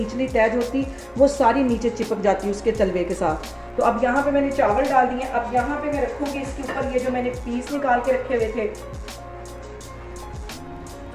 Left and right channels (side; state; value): both; identical; correlation 1.00